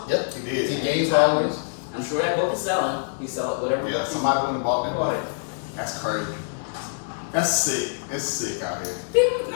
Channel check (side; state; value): right; silent; digital silence